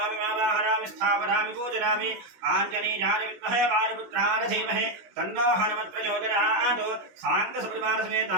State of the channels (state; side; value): late; left; 16 ms